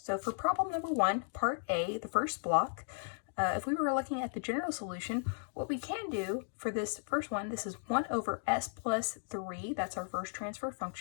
So for problem number 1, part A, the first block, if we were looking at the general solution, what we can do for this first one, this is 1 over s plus 3. That's our first transfer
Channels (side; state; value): right; silent; digital silence